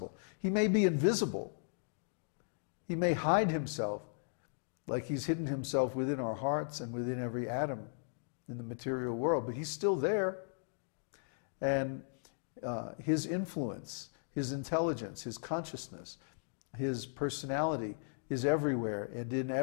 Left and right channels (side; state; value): right; silent; digital silence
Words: He may be invisible. He may hide himself, like he's hidden himself within our hearts and within every atom in the material world, but he's still there. And his influence, his intelligence, his consciousness, his personality is everywhere and in